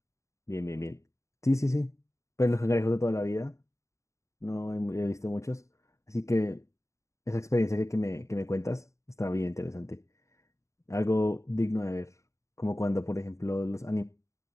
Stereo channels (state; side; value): late; right; 0.14 ms